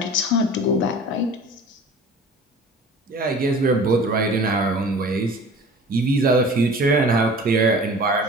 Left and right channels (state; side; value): normal; both; correlation 0.42